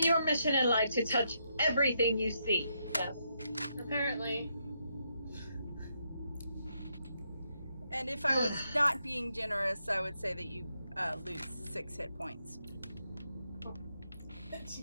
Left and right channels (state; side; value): inverted; both; correlation -0.79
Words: your mission in life to touch everything you see? Yes. Apparently. And if I was not being generous, I would say that you lose 6 hit points. Jeez.